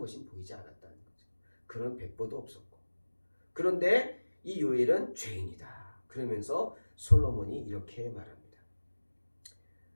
보이지 않았다는 거죠. 그런 백보도 없었고. 그런데 이 요엘은 죄인이다. 그러면서 솔로몬이 이렇게 말합니다.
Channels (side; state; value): both; inverted; correlation -1.00